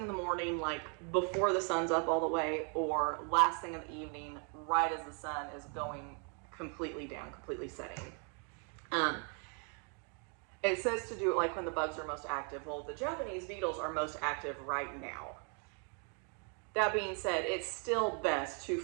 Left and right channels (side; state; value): left; quieter; 39.4 dB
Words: in the morning, like before the sun's up all the way, or last thing in the evening, right as the sun is going completely down, completely setting. It says to do it like when the bugs are most active. Well, the Japanese beetles are most active right now. That being said, it's still best to